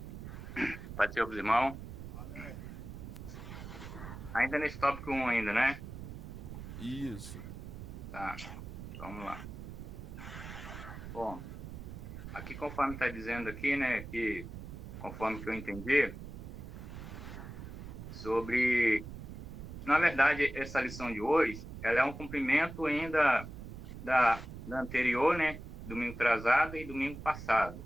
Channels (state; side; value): noise; right; rumble, 10 dB below the sound